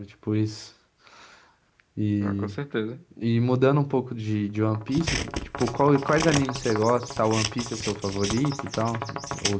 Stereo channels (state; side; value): identical; both; correlation 1.00